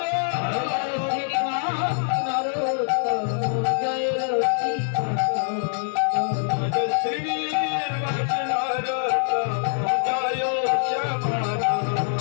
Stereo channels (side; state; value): right; silent; digital silence